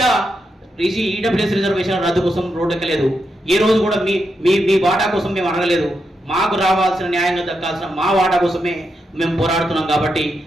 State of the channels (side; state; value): both; normal; correlation 0.84